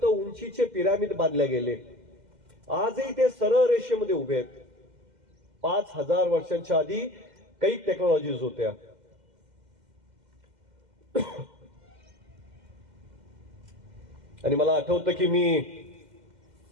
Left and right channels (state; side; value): late; left; 2.1 ms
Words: उंचीचे पिरामिड बांधले गेले. आजही ते सरळ रेषेमध्ये उभे आहेत. 5000 वर्षांच्या आधी काही टेक्नॉलॉजीज होत्या. आणि मला आठवतं की मी